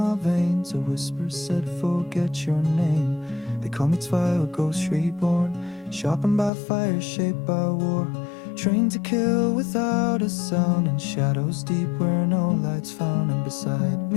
veins. A whisper said, forget your name. They call me Zwei, a ghost reborn. Sharpened by fire, shaped by war. Trained to kill without a sound. In shadows deep where no light's found. And beside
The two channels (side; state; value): right; drops out; at 6.5 s